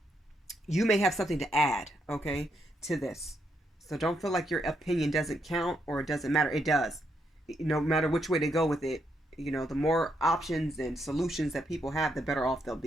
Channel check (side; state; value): both; normal; correlation 0.78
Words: you may have something to add, okay, to this. So don't feel like your opinion doesn't count or it doesn't matter. It does. No matter which way they go with it, you know, the more options and solutions that people have, the better off they'll